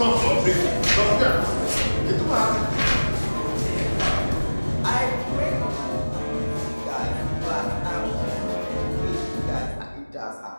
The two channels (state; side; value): inverted; both; correlation -1.00